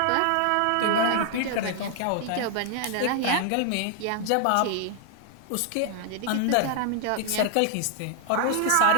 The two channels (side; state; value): both; different; correlation 0.00